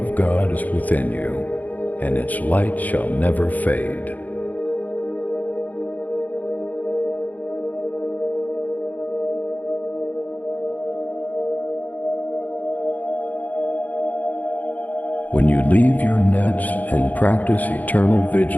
God is within you, and its light shall never fade. When you leave your nets and practice eternal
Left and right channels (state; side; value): late; right; 0.079 ms